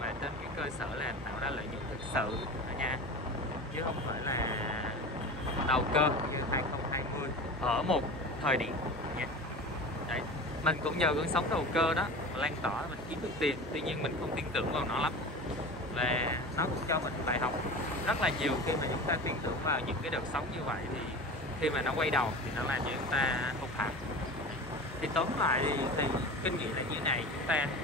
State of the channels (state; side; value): normal; both; correlation 0.32